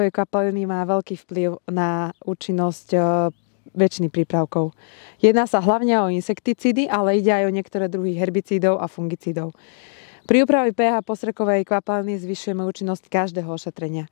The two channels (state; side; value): silent; right; digital silence